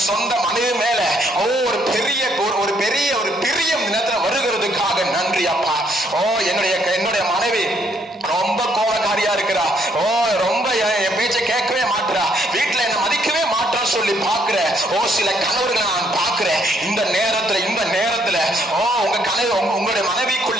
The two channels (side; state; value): both; normal; correlation 0.70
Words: சொந்த மனைவி மேல ஒரு பெரிய பிரியம் நேரத்துல வருகிறதுக்காக நன்றி அப்பா. என்னுடைய மனைவி ரொம்ப கோபக்காரியா இருக்கிறா, ரொம்ப என் பேச்சை கேட்கவே மாட்டுறா, வீட்டுல என்ன மதிக்கவே மாட்டான்னு சொல்லி பாக்குற சில கணவர்களை நான் பாக்குறேன். இந்த நேரத்துல உங்க கனவு, உங்களுடைய